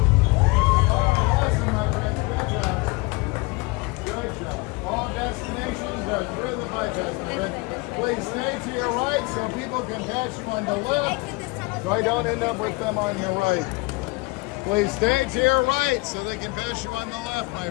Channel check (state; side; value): quieter; right; 25.1 dB